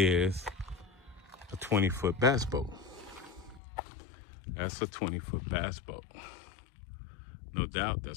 a 20-foot bass boat. That's a 20-foot bass boat. No doubt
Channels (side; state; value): right; drops out; at 3.6 s